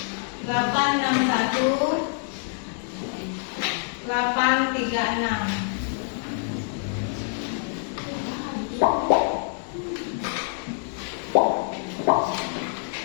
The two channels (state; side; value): silent; right; 57 dB below the other